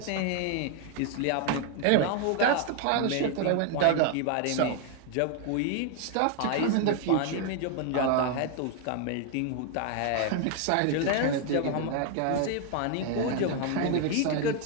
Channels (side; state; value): both; different; correlation 0.00